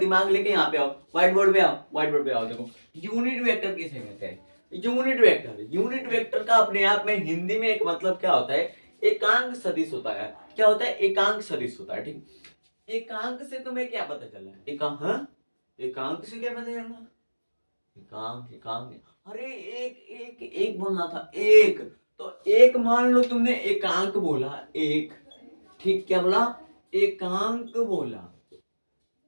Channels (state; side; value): inverted; both; correlation -1.00